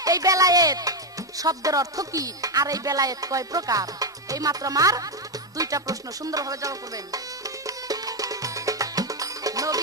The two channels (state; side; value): normal; both; correlation 0.06